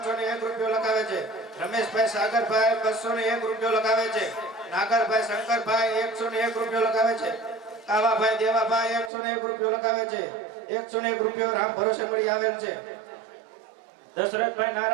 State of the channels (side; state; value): left; drops out; at 9.1 s